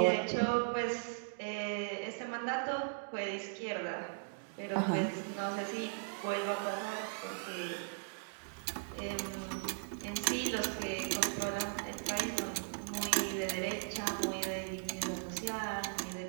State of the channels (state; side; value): silent; left; digital silence